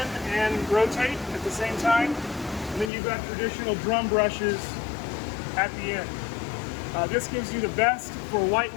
and rotate at the same time. And then you've got traditional drum brushes at the end. This gives you the best for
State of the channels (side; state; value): right; drops out; at 2.9 s